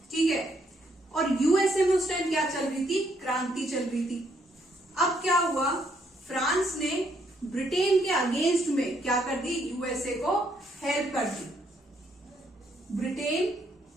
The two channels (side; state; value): both; normal; correlation 0.72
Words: ठीक है। और यूएसए में उस टाइम क्या चल रही थी, क्रांति चल रही थी। अब क्या हुआ, फ्रांस ने ब्रिटेन के अगेंस्ट में क्या कर दी, यूएसए को हेल्प कर दी। ब्रिटेन,